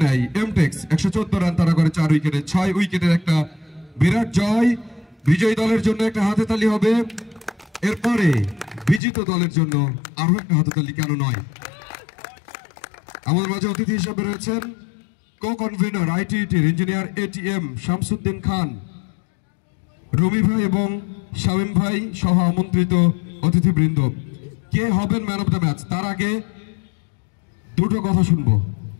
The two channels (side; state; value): right; drops out; at 9.0 s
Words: নেয় এমটেক্স। 114 রান তারা করে 4 উইকেটে। 6 উইকেটের একটা বিরাট জয়। বিজয়ী দলের জন্য একটা হাতে তালি হবে, এরপরে বিজিত দলের জন্য আরো একটা হাতে তালি কেন নয়। আমাদের মাঝে অতিথি হিসেবে রয়েছেন কো কনভেনর আইটিটির ইঞ্জিনিয়ার এটিএম শামসুদ্দিন খান, রবি ভাই এবং শামীম ভাই সহ আমন্ত্রিত অতিথিবৃন্দ। কে হবেন ম্যান অফ দ্য ম্যাচ তার আগে দুটো কথা শুনবো,